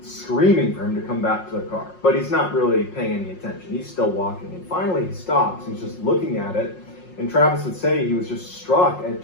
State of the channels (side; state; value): right; late; 5.5 ms